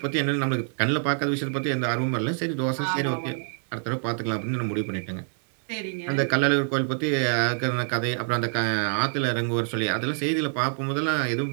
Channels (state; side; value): silent; left; 58 dB below the other